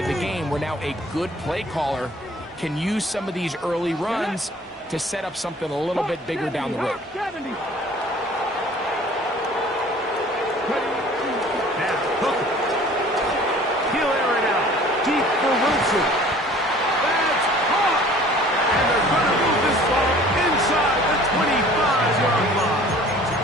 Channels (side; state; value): both; normal; correlation 0.50